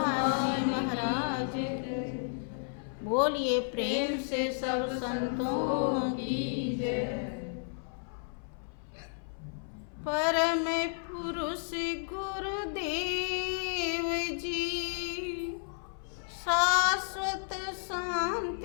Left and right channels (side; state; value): right; silent; 56 dB below the other